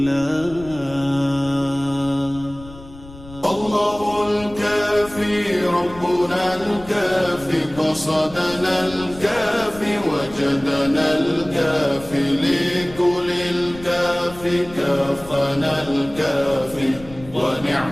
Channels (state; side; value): noise; left; rumble, 18 dB below the sound